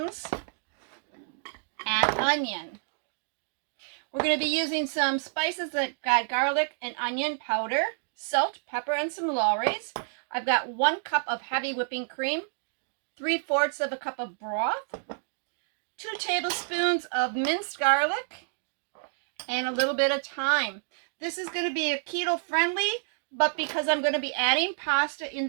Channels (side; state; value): left; silent; digital silence